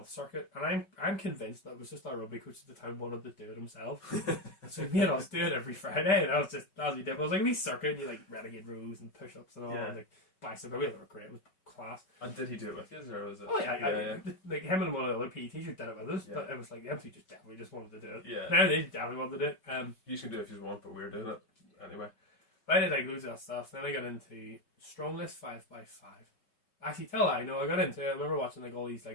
circuit, and I'm convinced that it was just our rugby coach at the time wanted to do it himself. So he made us do it every Friday, and that was what he did. But it was like a wee circuit, and you like renegade rows and push ups and all, and like bicep. We were great. It was class. And did he do it with you, or was it? Oh yeah. Like him and one of the other PE teachers did it with us, but it was like the MC just wanted to do it. Yeah. Now they definitely wanted to do it. You can do it if you want, but we're doing it anyway. But I did like loads of that stuff. Then I got into Strongless 5x5. Actually, I got into it. I remember watching like all these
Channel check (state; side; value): late; right; 5.3 ms